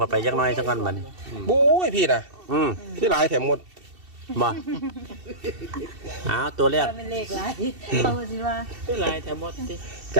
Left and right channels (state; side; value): late; left; 2.7 ms